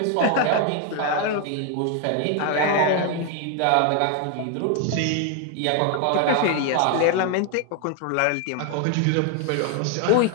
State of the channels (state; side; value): different; both; correlation 0.00